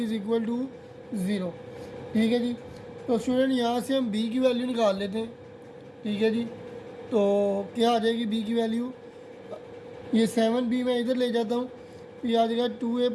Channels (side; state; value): both; identical; correlation 1.00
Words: equal to 0। ठीक है जी। तो स्टूडेंट यहाँ से हम b की वैल्यू निकाल लेते हैं। ठीक है जी। तो क्या आ जाएगी b की वैल्यू, ये 7b मैं इधर ले जाता हूँ, ये आ जाएगा 2a